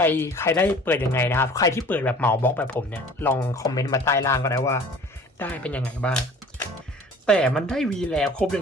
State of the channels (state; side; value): normal; both; correlation 0.47